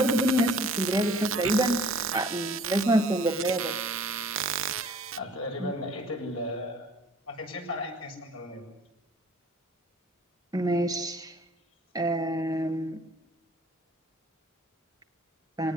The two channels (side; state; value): both; normal; correlation 0.52